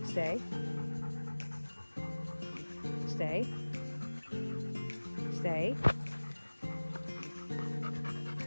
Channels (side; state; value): both; inverted; correlation -1.00